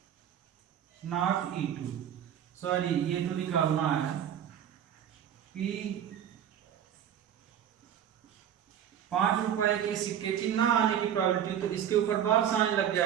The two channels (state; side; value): quieter; left; 9.7 dB